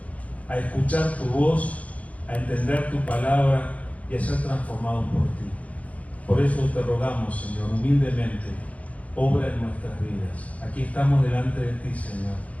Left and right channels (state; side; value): late; right; 0.067 ms